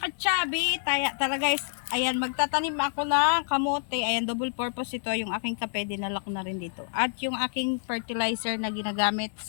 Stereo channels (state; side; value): silent; right; digital silence